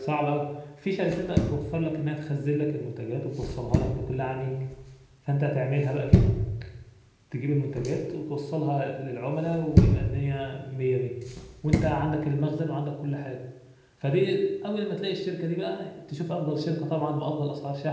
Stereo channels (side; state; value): both; identical; correlation 1.00